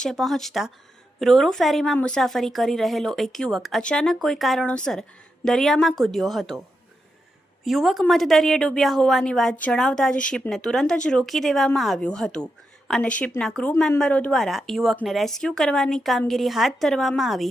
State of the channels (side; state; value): both; normal; correlation 0.86